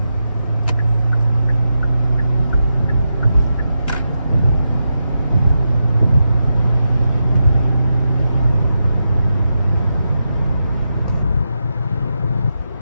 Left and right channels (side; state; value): both; inverted; correlation -0.88